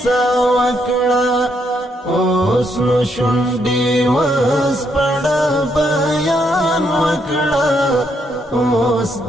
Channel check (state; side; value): normal; both; correlation 0.75